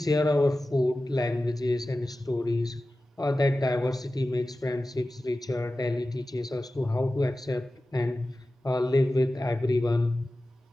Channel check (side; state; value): both; normal; correlation 0.95